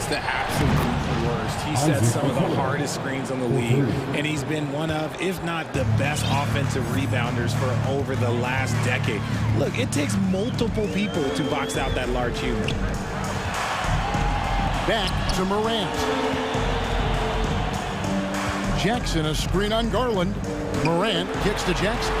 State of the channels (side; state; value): both; identical; correlation 1.00